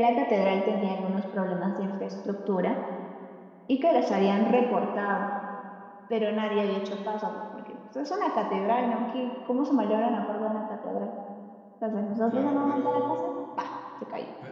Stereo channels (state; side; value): identical; both; correlation 1.00